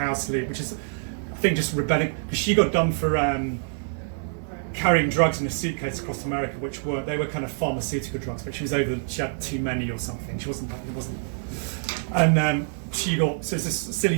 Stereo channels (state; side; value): silent; left; digital silence